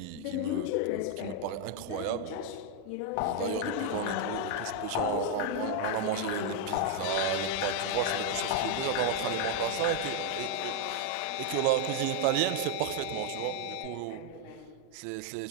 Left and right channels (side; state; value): both; different; correlation 0.00